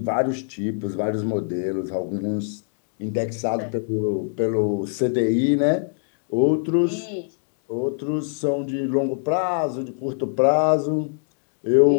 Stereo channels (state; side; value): silent; right; digital silence